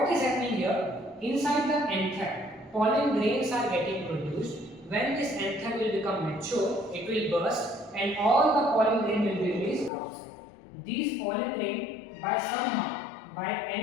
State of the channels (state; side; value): drops out; right; at 9.9 s